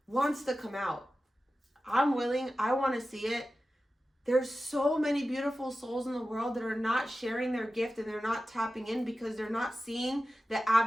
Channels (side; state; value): both; normal; correlation 0.94